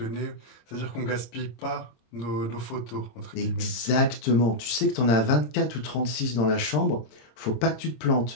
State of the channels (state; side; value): late; right; 26 ms